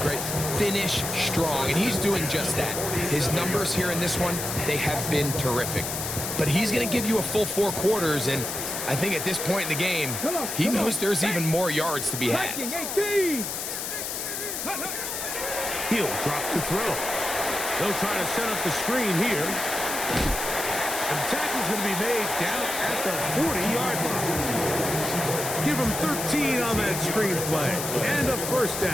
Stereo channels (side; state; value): left; noise; hiss, 4 dB below the sound